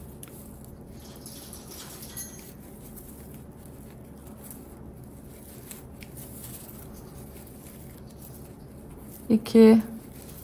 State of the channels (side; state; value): both; identical; correlation 1.00